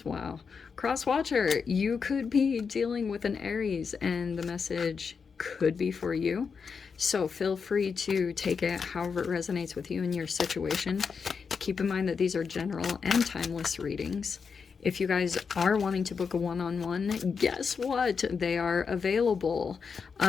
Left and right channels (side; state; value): right; quieter; 5.7 dB